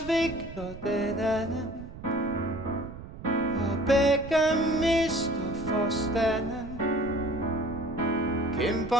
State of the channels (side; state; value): right; noise; rumble, 13 dB below the sound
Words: den anden, og begge mister forstanden.